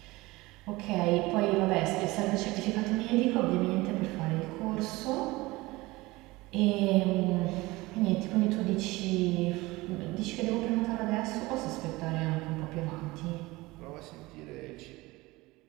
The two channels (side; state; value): left; quieter; 21.0 dB